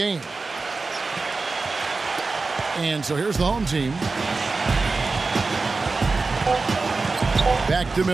And so here's the home team. Back to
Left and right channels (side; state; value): left; quieter; 3.9 dB